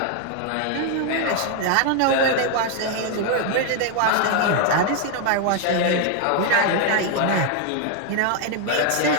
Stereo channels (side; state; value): both; different; correlation 0.00